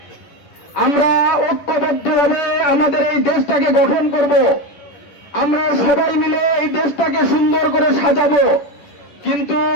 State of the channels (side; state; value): right; late; 10 ms